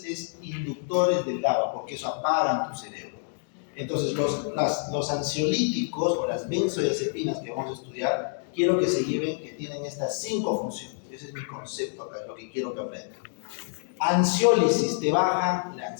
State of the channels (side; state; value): right; silent; digital silence